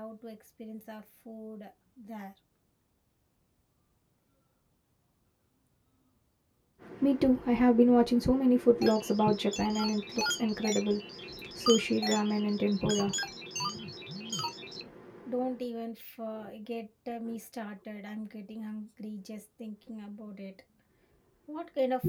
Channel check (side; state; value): both; identical; correlation 1.00